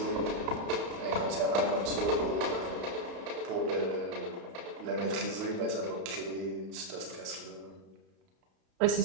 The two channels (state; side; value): late; left; 32 ms